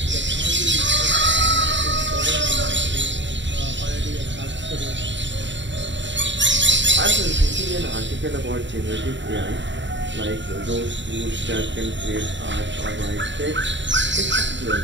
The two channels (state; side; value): late; left; 0.53 ms